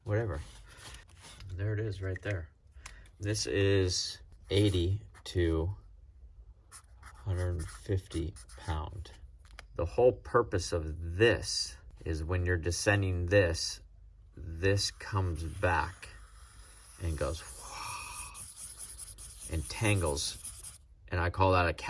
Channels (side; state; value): both; identical; correlation 1.00